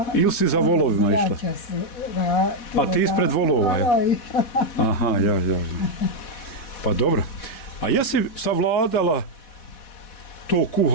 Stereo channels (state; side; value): late; right; 4.1 ms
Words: Ili si za volovima išla? A ti ispred volova, je? Aha, ja. Pa dobro. A jesi savladala to